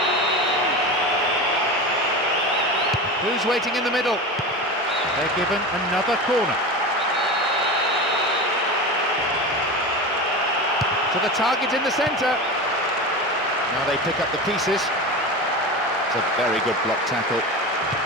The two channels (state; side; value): normal; both; correlation 0.26